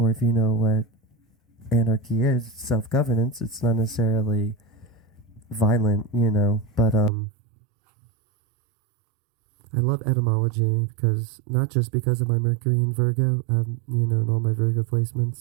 if you know what anarchy is, self-governance, it's not necessarily violent, but I love etymology, because not just because of my Mercury in Virgo, and all my Virgo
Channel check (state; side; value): drops out; left; at 7.1 s